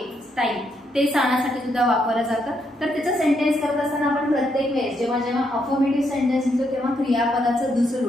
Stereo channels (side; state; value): both; normal; correlation 0.77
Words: टाइम ते सांगण्यासाठी सुद्धा वापरलं जातं. तर त्याचं सेंटेन्स करत असताना आपण प्रत्येक वेळेस जेव्हा जेव्हा अफर्मेटिव्ह सेंटेन्स लिहितो तेव्हा क्रियापदाचं दुसरं